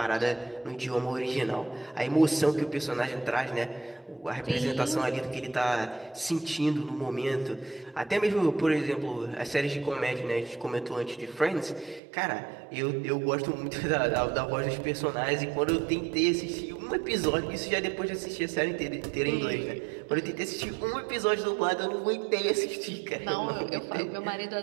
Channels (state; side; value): drops out; left; at 12.0 s